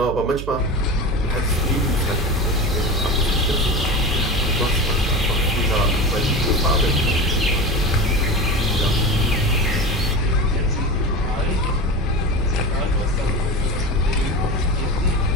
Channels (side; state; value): right; noise; hum, 8 dB below the sound